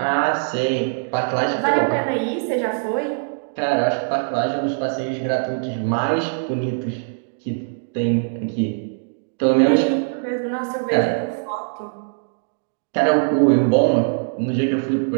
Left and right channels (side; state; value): left; silent; digital silence